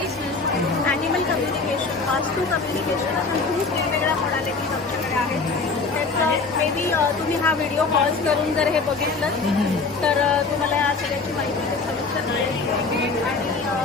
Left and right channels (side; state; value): right; quieter; 4.1 dB